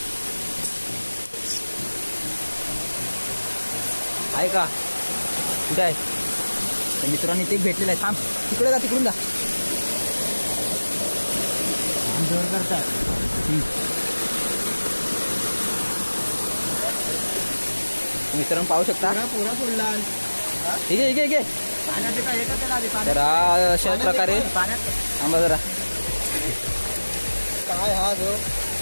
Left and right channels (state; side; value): inverted; both; correlation -1.00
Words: आहे का कुठे आहे मित्रांनी ते भेटलेलं आहे. थांब तिकडे जा तिकडून जा जोर करतात. मित्रांनो पाहू शकता पुरा फुडला ठीक आहे तर अशा प्रकारे थांबा जरा काय हा जो